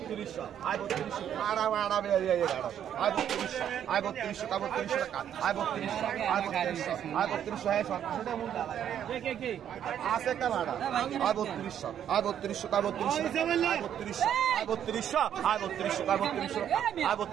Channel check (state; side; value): quieter; left; 9.7 dB